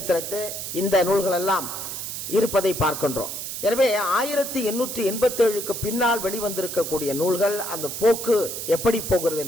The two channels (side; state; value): right; noise; hiss, 6 dB below the sound